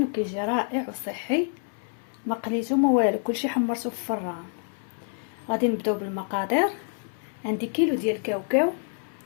وكيجي رائع وصحي، ما قليتو ما والو، كلشي حمرتو في الفران. غادي نبداو بالمقادير. عندي كيلو ديال الكاوكاو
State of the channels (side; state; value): right; silent; 60 dB below the other